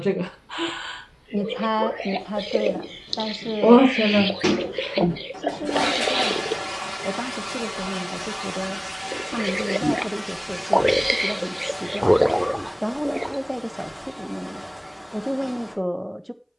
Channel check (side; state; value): both; identical; correlation 1.00